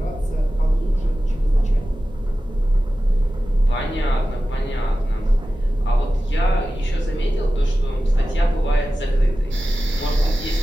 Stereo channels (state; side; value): normal; both; correlation 0.94